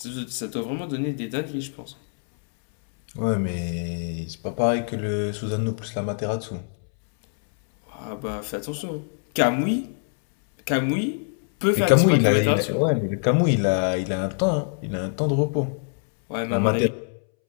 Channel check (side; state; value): right; silent; 62 dB below the other